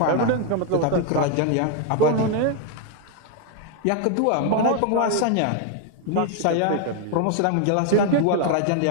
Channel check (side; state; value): both; different; correlation 0.01